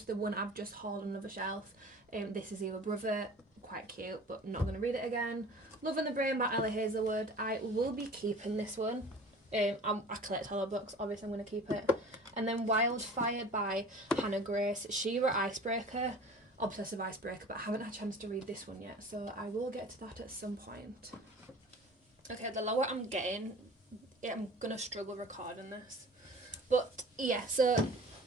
the one I've just hauled on another shelf. This is Either Brother. Quite cute, but not going to read it again. Love in the Brain by Ellie Hazelwood. I will be keeping this one. I collect horror books, obviously I'm going to keep it. And then Wildfire by Hannah Grace. She-Ra Icebreaker. Obsessive Icebreaker, but I haven't had a chance to read this one yet, so I will get to that at some point. Okay, the lower I'm getting, I'm going to struggle recording this. But yeah, so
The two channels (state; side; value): normal; both; correlation 0.42